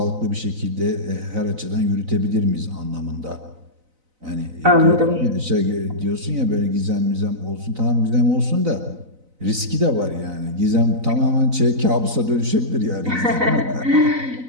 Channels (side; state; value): left; late; 4.0 ms